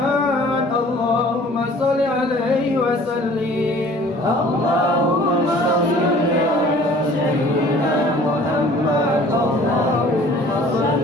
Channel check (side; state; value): both; normal; correlation 0.51